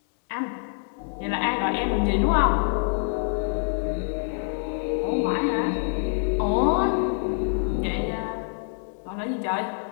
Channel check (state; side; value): silent; right; 61 dB below the other